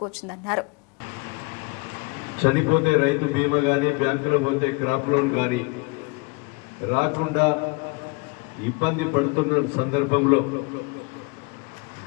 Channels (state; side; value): quieter; right; 28.7 dB